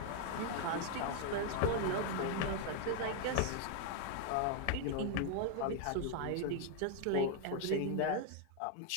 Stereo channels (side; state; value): both; different; correlation 0.00